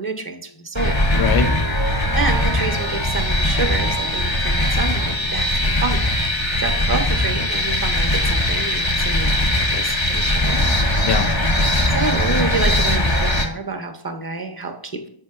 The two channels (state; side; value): late; right; 1.0 ms